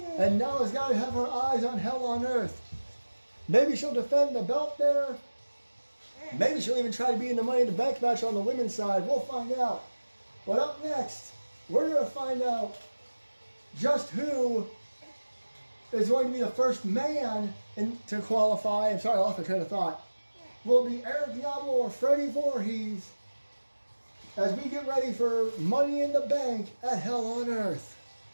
now has got to have her eyes on Hell on Earth. Maybe she'll defend the belt there. Maybe she'll even try to be in the Money in the Bank match on the women's side. We'll find out. But up next, we're going to find out just who is going to be the first man to qualify. I'm sorry, I lost my train of thought. Will it be Eric Diablo or Freddie Voorhees? As we get ready for Money in the Bank at Hell on Earth.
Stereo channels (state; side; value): inverted; both; correlation -1.00